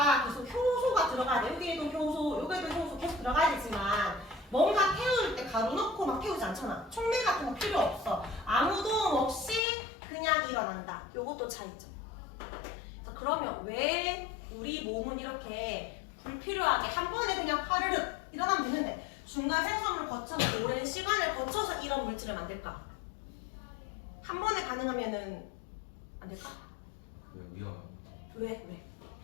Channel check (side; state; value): right; drops out; at 9.6 s